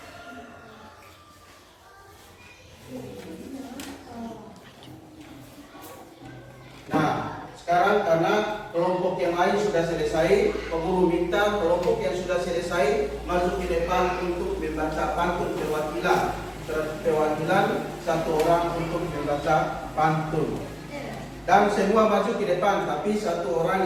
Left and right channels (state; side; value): identical; both; correlation 1.00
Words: Nah, sekarang karena kelompok yang lain sudah selesai, penguru minta kelompok yang sudah selesai masuk ke depan untuk membaca pantun perwakilan. Perwakilan satu orang untuk membaca pantun. Dan semua maju ke depan, tapi satu orang